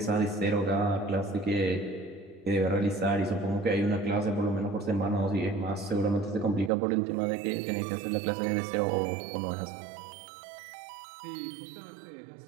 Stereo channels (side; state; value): left; drops out; at 6.7 s